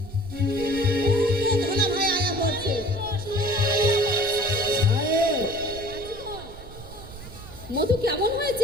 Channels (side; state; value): right; noise; rumble, 15 dB below the sound